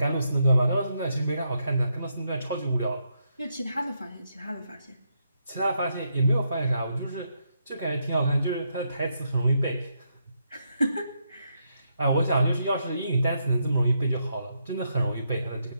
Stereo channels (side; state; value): both; inverted; correlation -0.79